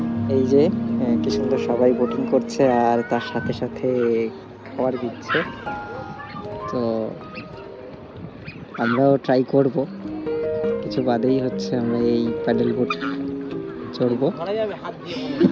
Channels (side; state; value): both; identical; correlation 1.00